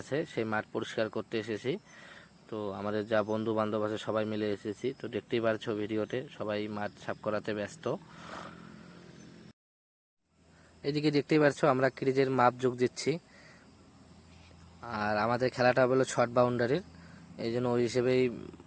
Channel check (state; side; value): identical; both; correlation 1.00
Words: আছে, সেই মাঠ পরিষ্কার করতে এসেছি। তো আমাদের যা বন্ধু বান্ধব আছে সবাই মিলে এসেছি। তো দেখতেই পারছো ভিডিওতে সবাই মাঠ সাফ করাতে ব্যস্ত। এদিকে দেখতেই পারছো আমরা ক্রিজের মাপ যোগ দিচ্ছি। আর আমাদের খেলাটা হলো শর্ট বাউন্ডারির, এই জন্য ওই হিসেবেই